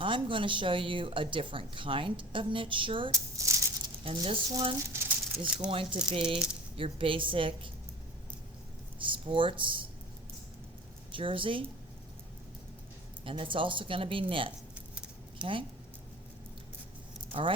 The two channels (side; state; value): both; normal; correlation 0.38